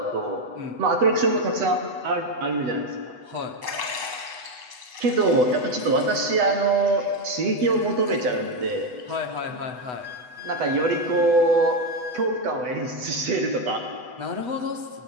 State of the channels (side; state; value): left; late; 8.0 ms